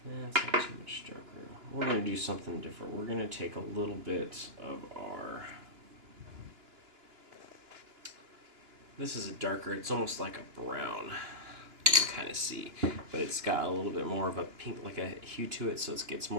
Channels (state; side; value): late; left; 2.9 ms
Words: it's not too much darker. We're going to do something different. We're going to take a little bit of our... This is a darker, it's almost like a brown. You can kind of see. But it's got a little bit more of a pink, like a hue to it, so it gets